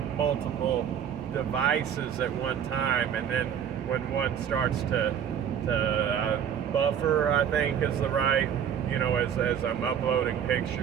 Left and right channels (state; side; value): quieter; left; 8.7 dB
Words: multiple devices at one time, and then when one starts to buffer, I think is the right, you know, as I'm uploading